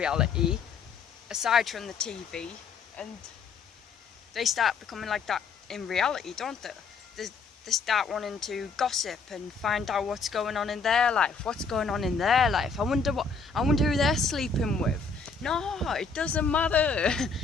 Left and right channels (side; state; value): right; quieter; 4.9 dB